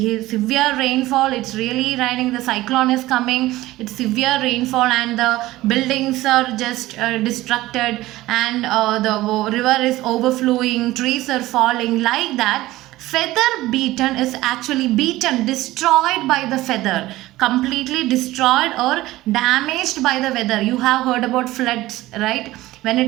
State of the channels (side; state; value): left; quieter; 17.2 dB